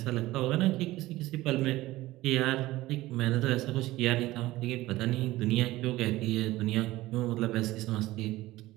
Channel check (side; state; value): left; quieter; 17.5 dB